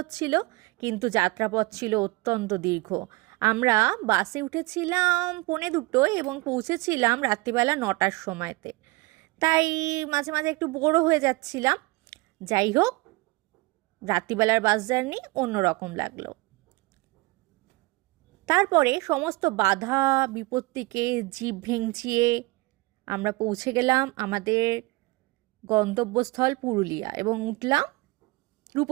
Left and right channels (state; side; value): quieter; left; 23.5 dB